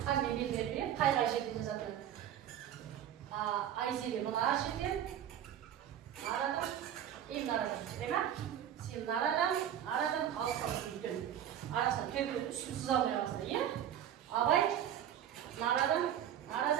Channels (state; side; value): quieter; left; 10.3 dB